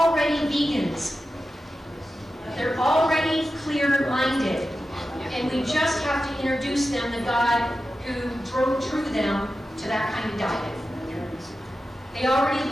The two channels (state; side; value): normal; both; correlation 0.92